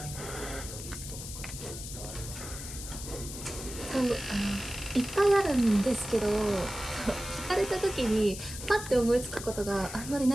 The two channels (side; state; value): left; noise; hiss, 10 dB below the sound